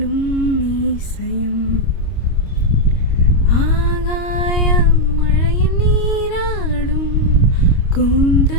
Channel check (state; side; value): late; right; 25 ms